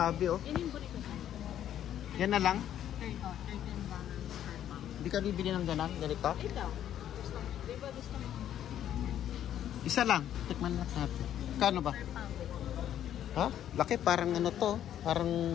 oh. Yan na lang? $13 per pound. Hindi ka bibili ng ganang ganito? Ito. Di ba gusto mo? Isa lang. Tikman lang natin. Kano ba? Per pound. Ha? Laki. Parang ano to.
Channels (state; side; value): quieter; right; 10.8 dB